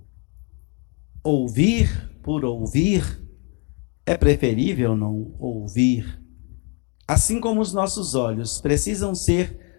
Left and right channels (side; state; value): right; quieter; 32.0 dB